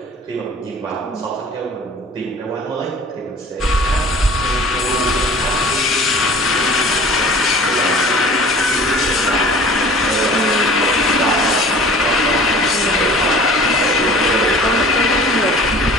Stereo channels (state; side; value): normal; both; correlation 0.45